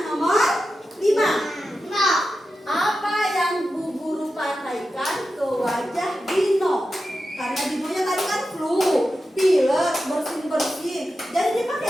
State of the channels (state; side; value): normal; both; correlation 0.91